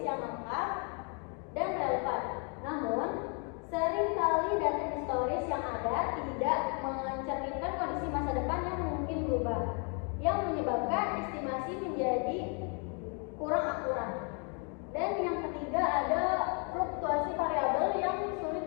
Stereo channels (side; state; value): right; quieter; 37.7 dB